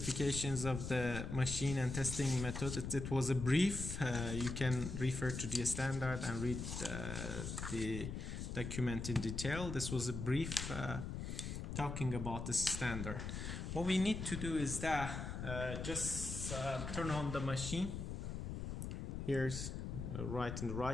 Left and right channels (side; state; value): left; noise; rumble, 5 dB below the sound